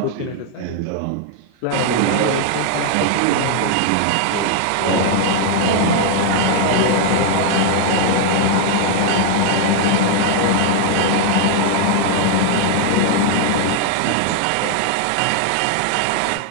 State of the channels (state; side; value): different; both; correlation 0.00